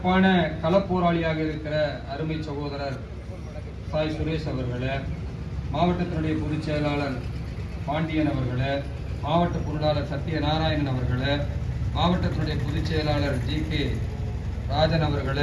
களப்போராளியாக இருக்கிற அருமை சகோதரர் சாய் சுரேஷ் அவர்களே, மாவட்டத்தினுடைய பொதுச் செயலாளர் பாண்டியன் அவர்களே, மாவட்ட பொருளாளர் சத்யநாராயணன் அவர்களே, மாவட்டத்தினுடைய பொதுச் செயலாளர் ஜி.கே. ராஜன்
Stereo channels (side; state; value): both; identical; correlation 1.00